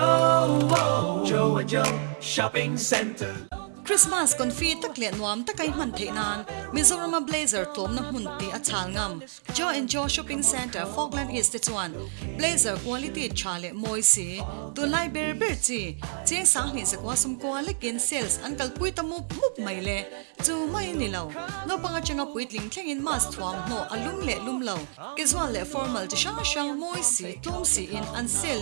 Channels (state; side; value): silent; left; 60 dB below the other